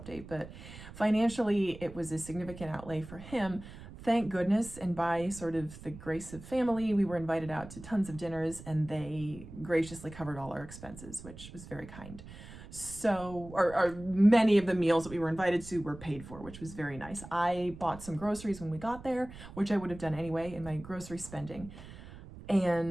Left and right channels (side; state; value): right; noise; rumble, 15 dB below the sound